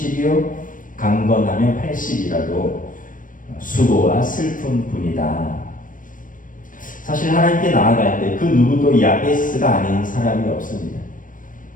강건하면 80이라도 수고와 슬픔뿐이다. 사실 하나님께 나아갈 때 그 누구도 야베스가 아닌 사람이 없습니다.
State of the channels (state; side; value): late; right; 0.39 ms